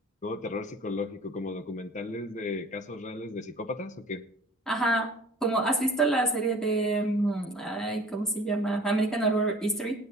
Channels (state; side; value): normal; both; correlation 0.45